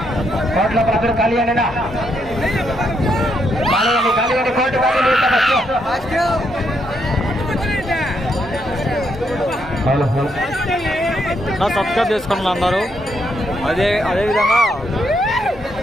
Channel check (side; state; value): both; normal; correlation 0.77